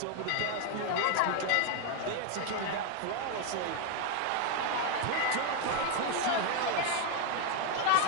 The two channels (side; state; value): both; different; correlation 0.01